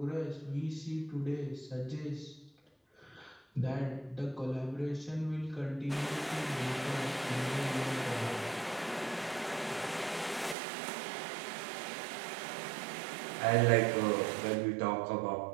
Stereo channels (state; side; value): drops out; left; at 10.6 s